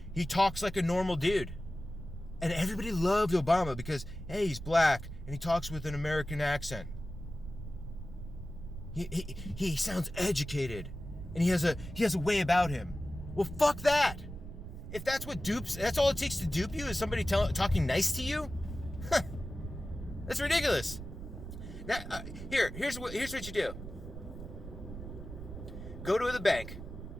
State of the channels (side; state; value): right; noise; rumble, 10 dB below the sound